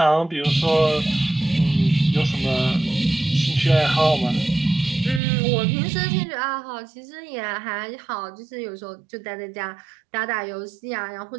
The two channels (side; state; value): left; drops out; at 5.2 s